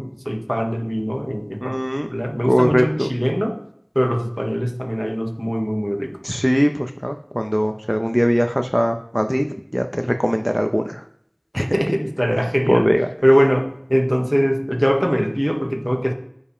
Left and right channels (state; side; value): identical; both; correlation 1.00